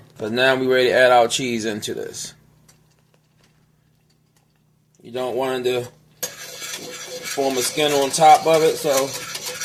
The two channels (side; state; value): both; identical; correlation 1.00